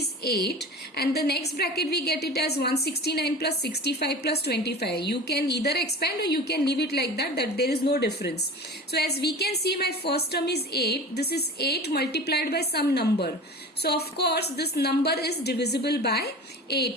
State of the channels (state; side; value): normal; both; correlation 0.34